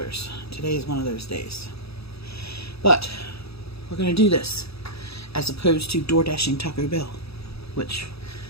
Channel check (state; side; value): late; right; 0.77 ms